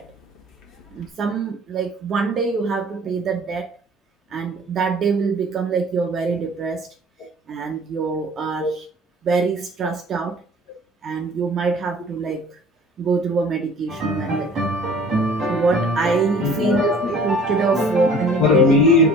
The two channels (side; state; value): both; normal; correlation 0.49